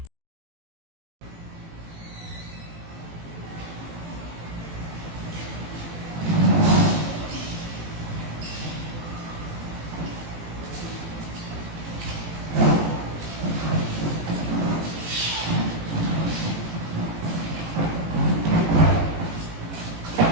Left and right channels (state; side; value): late; left; 18 ms